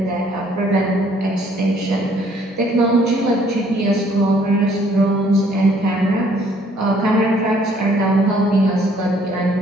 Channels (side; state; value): both; normal; correlation 0.62